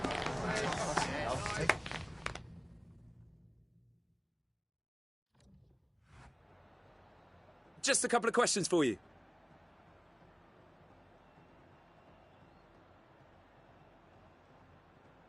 Just a couple of questions for you.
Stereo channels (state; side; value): identical; both; correlation 1.00